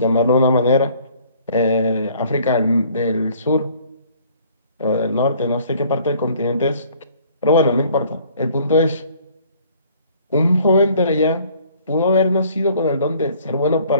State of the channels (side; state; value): both; inverted; correlation -0.57